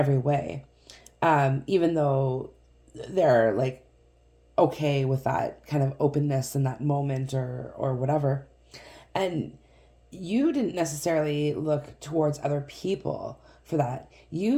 way. Even though they're like okay with that kind of openness in that moment or whatever. And you didn't necessarily look towards other people for that.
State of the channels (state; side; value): identical; both; correlation 1.00